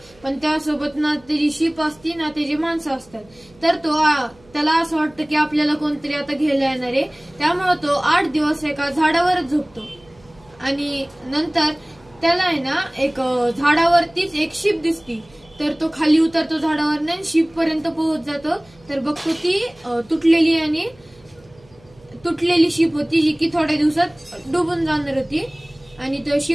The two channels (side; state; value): right; noise; hum, 28 dB below the sound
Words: पण त्यासोबत ना त्याची शिप असती ना त्याची माणसं असतात। तर त्याला असं वाटतं की आपल्याला कोणतरी आता घ्यायला येणार आहे, त्यामुळे तो 8 दिवस एका झाडावरच झोपतो। आणि नंतर त्याला आहे ना एक झाडावरतीच एक शिप दिसती, तर तो खाली उतरतो झाडावर आणि शिप पर्यंत पोहोच जातो। तर बघतो ती तुटलेली शिप होती, जी की थोड्या दिवसात डुबून जाणार होती। आणि तो